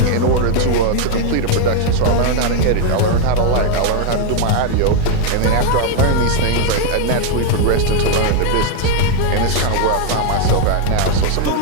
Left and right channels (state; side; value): different; both; correlation 0.00